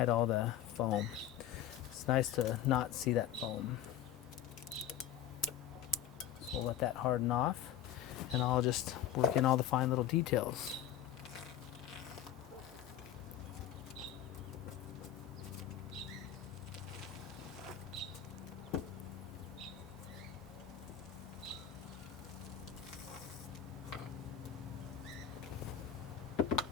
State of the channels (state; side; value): quieter; right; 10.2 dB